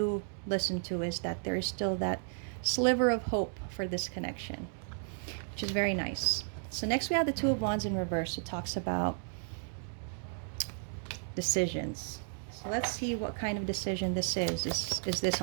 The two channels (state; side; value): silent; left; 55 dB below the other